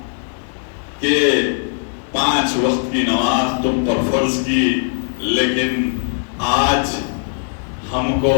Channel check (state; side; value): silent; right; 66 dB below the other